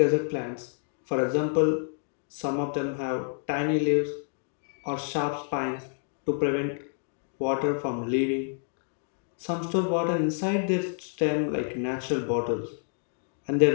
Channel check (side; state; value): right; silent; 58 dB below the other